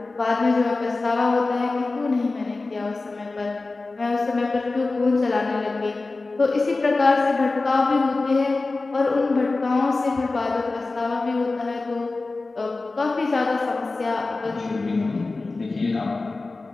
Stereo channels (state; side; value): quieter; right; 3.5 dB